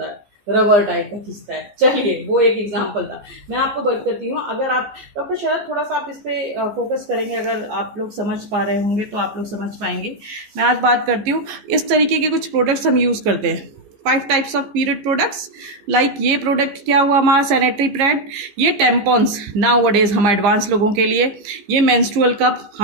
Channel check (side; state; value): left; late; 15 ms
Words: है, रबर टाइप का खिंचता है। चलिए, वो एक एग्जांपल था। मैं आपको बात करती हूँ, अगर आप डॉक्टर शरद थोड़ा सा आप इस पे फोकस करेंगे, अगर आप लोग समझ पा रहे होंगे तो आप लोग समझ पाएंगे। मैं आज बात करती हूँ, इस तरीके के कुछ प्रोडक्ट्स हम यूज़ करते हैं, 5 types of period products. Like ये प्रोडक्ट क्या हुआ हमारा, सैनिटरी पैड, ये टेम्पॉन्स नाउ डेज हम एडवांस लोगों के लिए, ये मेंस्ट्रुअल कप